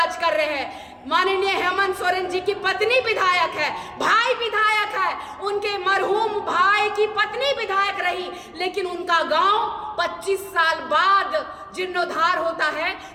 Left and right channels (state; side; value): identical; both; correlation 1.00